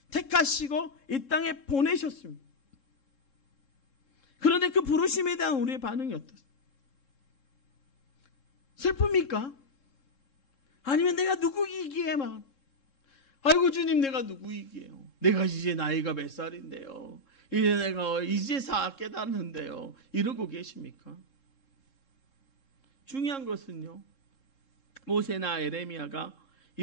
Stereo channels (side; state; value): right; late; 3.7 ms